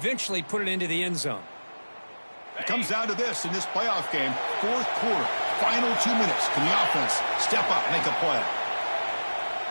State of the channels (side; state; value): both; inverted; correlation -1.00